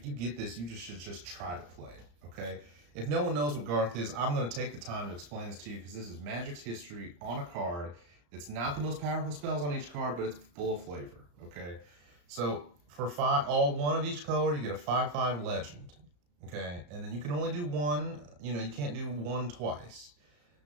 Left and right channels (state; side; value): late; left; 34 ms